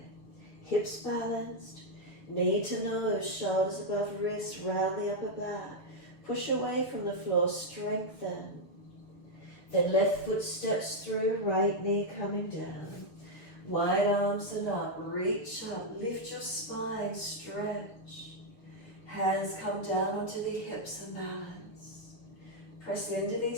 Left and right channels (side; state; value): right; late; 7.2 ms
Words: Hips balanced. Knee to nose, shoulders above wrist, round the upper back. Push away from the floor, strengthen. Then left foot steps through, right knee coming down. Wide arms and up, reach up, lift your spine, stretch. Hands come down onto the hips and balance. Press into